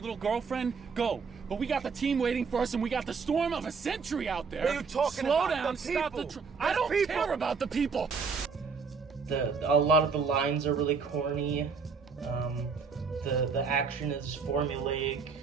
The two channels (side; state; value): left; quieter; 5.3 dB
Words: girlfriend? Go. But we got the team waiting for us, and we got the storm of a century out there. What are you talking Slow about? down, The stop the... people. I don't people. care about the people. A lot of the lines are really corny. The action is formulaic